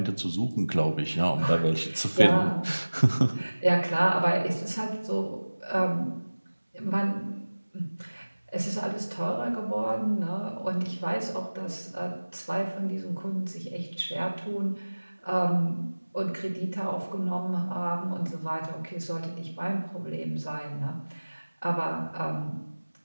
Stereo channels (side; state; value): both; inverted; correlation -1.00